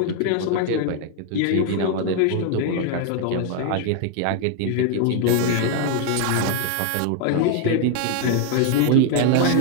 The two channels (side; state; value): both; different; correlation 0.00